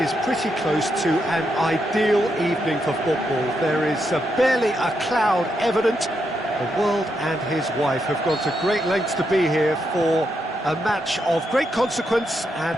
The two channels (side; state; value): both; normal; correlation 0.82